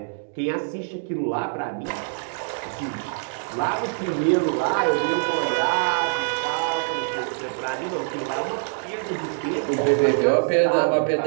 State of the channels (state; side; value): silent; left; digital silence